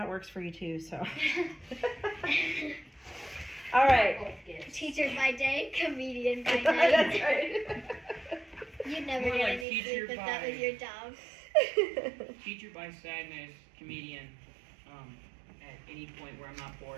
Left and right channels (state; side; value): drops out; left; at 9.7 s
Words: works for you too. So. All right. Both gifts. Teacher by day, comedian by That's night. right. You'd never More get like any teacher sleep if that by- was your job. Teacher by sadness, comedian, at any point where I'm not